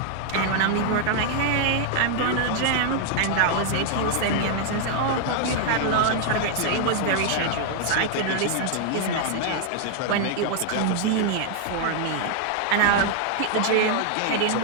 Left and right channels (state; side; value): different; both; correlation 0.00